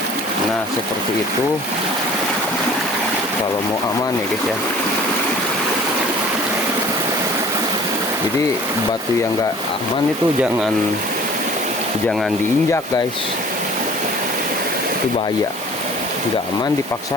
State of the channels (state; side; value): normal; both; correlation 0.48